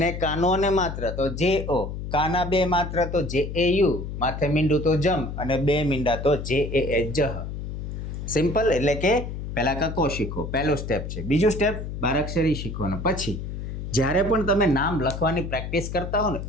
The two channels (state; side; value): noise; left; hum, 6 dB below the sound